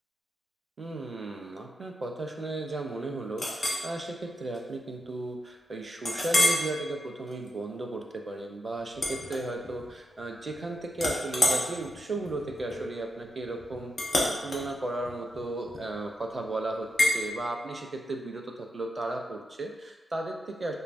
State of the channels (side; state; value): both; normal; correlation 0.87